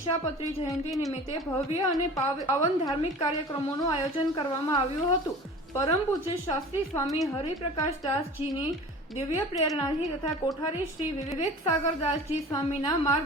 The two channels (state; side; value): normal; both; correlation 0.40